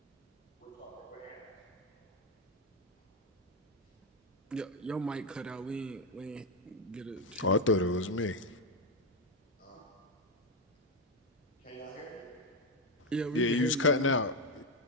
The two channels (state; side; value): normal; both; correlation 0.08